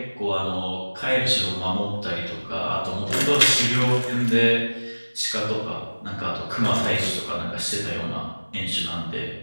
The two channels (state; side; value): inverted; both; correlation -1.00